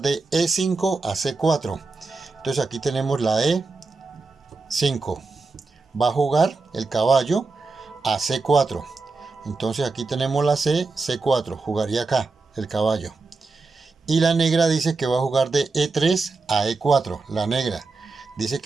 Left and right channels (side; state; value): left; quieter; 3.8 dB